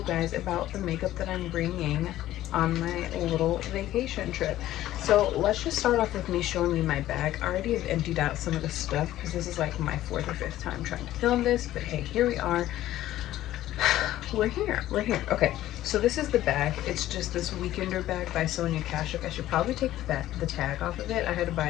guys about the makeup that I'm bringing on my little vacation trip. So let's just start off with me showing you my bag. I already have emptied out some of the stuff because this is like my 4th or 5th time trying to film this, but hey, here we are. We're here. Okay, so this is the bag. It's just this weekender bag by Sonia Kashuk. I should probably take the tag off of it. I had to buy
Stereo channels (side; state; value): right; quieter; 14.1 dB